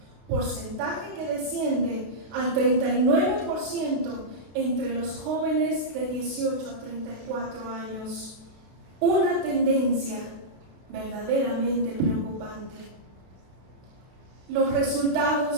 porcentaje que desciende al 39% entre los jóvenes de 18 a 34 años. Una tendencia verdaderamente preocupante. Los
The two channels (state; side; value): late; left; 32 ms